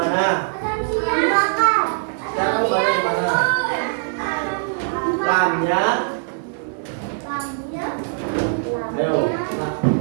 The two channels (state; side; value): silent; left; digital silence